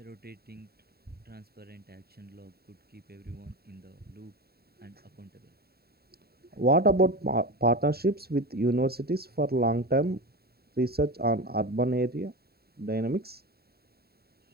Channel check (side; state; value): left; late; 0.45 ms